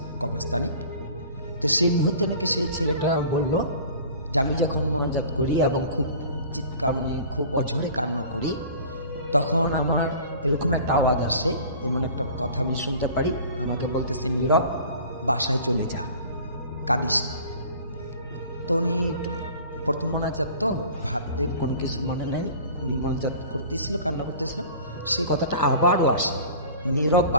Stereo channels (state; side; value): inverted; both; correlation -0.43